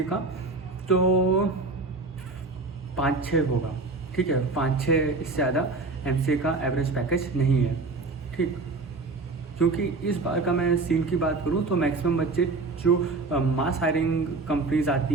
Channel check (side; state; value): left; quieter; 3.6 dB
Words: का तो 5-6 होगा, ठीक है, 5-6, इससे ज़्यादा MCA का एवरेज पैकेज नहीं है, ठीक। क्योंकि इस बार का मैं सीन की बात करूं तो मैक्सिमम बच्चे जो मास हायरिंग कंपनीज